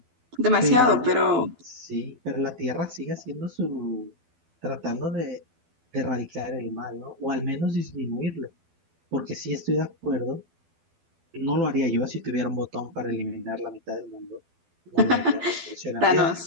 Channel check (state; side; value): late; left; 12 ms